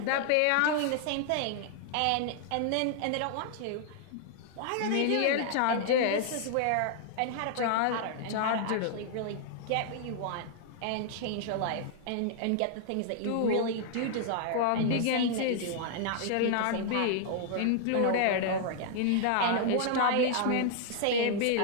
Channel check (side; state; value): both; different; correlation -0.01